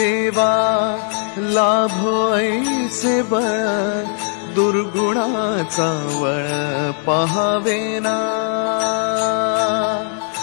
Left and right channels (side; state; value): right; silent; 67 dB below the other